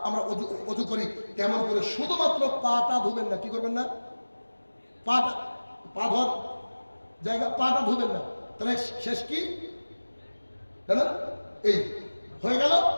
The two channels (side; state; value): both; inverted; correlation -1.00